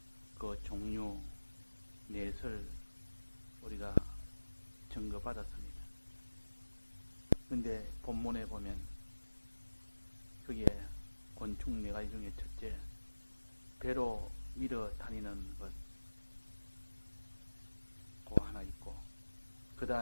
그 종류 넷을 우리가 증거받았습니다. 근데 본문에 보면 그게 곤충 네 가지 중에 첫째, 배로 밀어 다니는 것, 그거 하나 있고, 그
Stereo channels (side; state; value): both; inverted; correlation -1.00